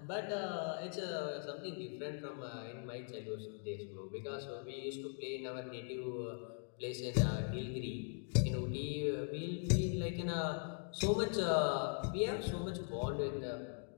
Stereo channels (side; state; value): right; silent; 51 dB below the other